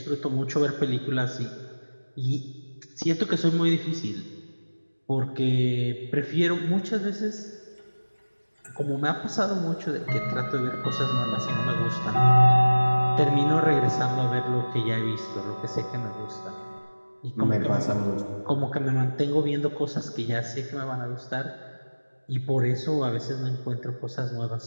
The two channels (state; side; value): inverted; both; correlation -1.00